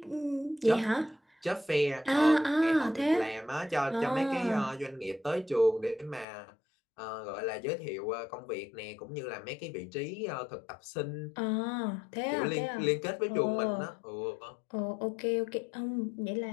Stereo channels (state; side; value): drops out; right; at 6.2 s